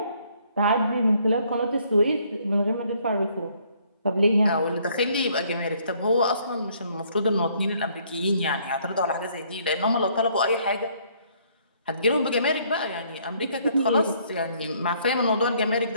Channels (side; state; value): both; inverted; correlation -0.65